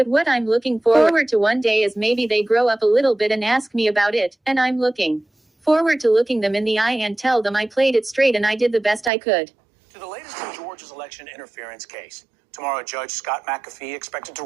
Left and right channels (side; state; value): left; drops out; at 9.1 s